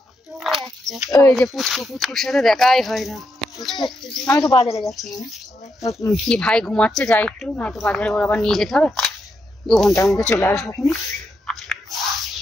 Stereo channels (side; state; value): both; normal; correlation 0.82